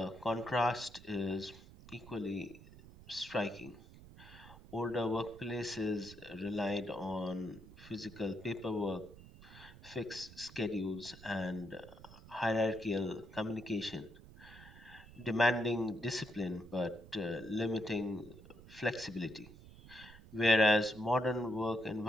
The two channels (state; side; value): noise; right; rumble, 18 dB below the sound